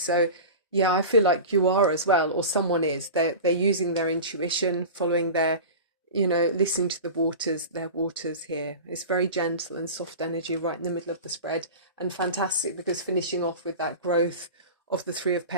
yeah, I feel like you are as well, or someone is. They're using their intuition, following their, you know, listening to their waters here. It's very gentle and soft energy right in the middle of the spread, and fantastic because finishing off with that growth of the Three of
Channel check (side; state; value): both; inverted; correlation -0.31